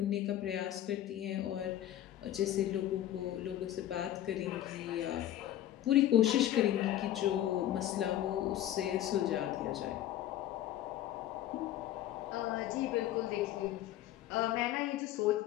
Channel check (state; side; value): quieter; right; 12.6 dB